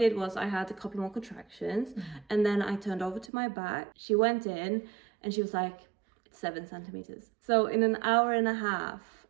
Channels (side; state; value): left; drops out; at 3.3 s